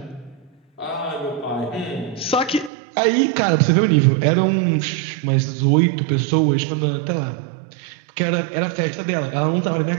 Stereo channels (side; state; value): left; drops out; at 2.7 s